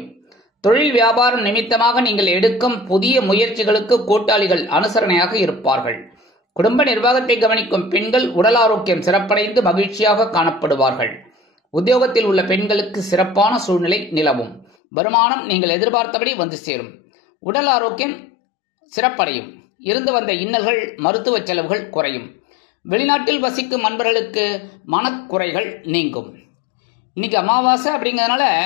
தொழில் வியாபாரம் நிமித்தமாக நீங்கள் எடுக்கும் புதிய முயற்சிகளுக்கு கூட்டாளிகள் அனுசரணையாக இருப்பார்கள். குடும்ப நிர்வாகத்தை கவனிக்கும் பெண்கள் உடல் ஆரோக்கியம் சிறப்படைந்து மகிழ்ச்சியாக காணப்படுவார்கள். உத்தியோகத்தில் உள்ள பெண்களுக்கு சிறப்பான சூழ்நிலை நிலவும். வருமானம் நீங்கள் எதிர்பார்த்தபடி வந்து சேரும். உடல் ஆரோக்கியம் சிறப்படையும். இருந்து வந்த இன்னல்கள் மருத்துவ செலவுகள் குறையும். வெளிநாட்டில் வசிக்கும் நண்பர்களுக்கு மனக்குறைகள் நீங்கும். இன்னைக்கு அமாவாசை அப்படிங்கிறதுனால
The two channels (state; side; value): drops out; right; at 14.7 s